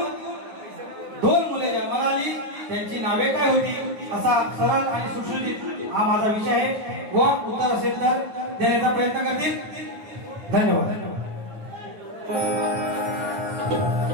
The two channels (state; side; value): late; left; 9.5 ms